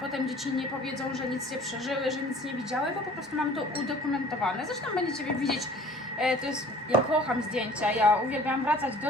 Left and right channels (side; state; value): both; normal; correlation 0.49